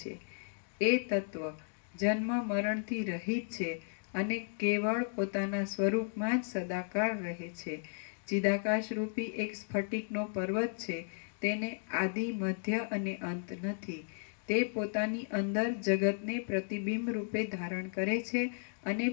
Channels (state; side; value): silent; right; digital silence